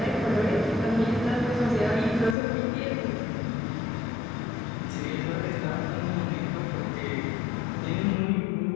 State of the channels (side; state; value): right; drops out; at 2.4 s